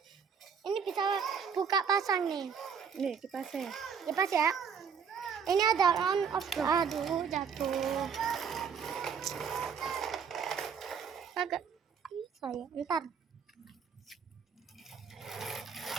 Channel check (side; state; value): left; quieter; 6.6 dB